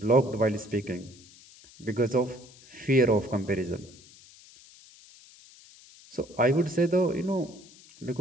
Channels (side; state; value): left; noise; hiss, 23 dB below the sound